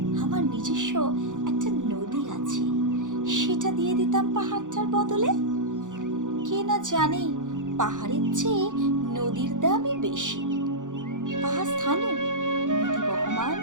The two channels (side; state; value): left; late; 0.86 ms